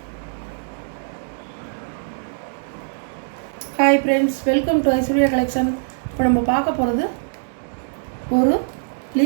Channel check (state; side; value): silent; left; digital silence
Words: ஹாய் ஃப்ரெண்ட்ஸ், வெல்கம் டு ஐஸ்வர்யா கலெக்ஷன். இப்போ நம்ம பார்க்க போகிறது ஒரு